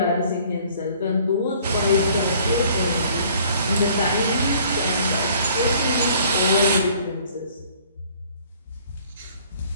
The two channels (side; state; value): both; inverted; correlation -0.56